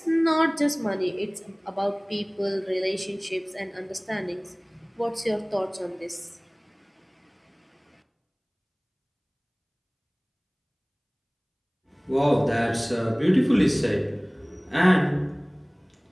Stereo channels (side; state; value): both; identical; correlation 1.00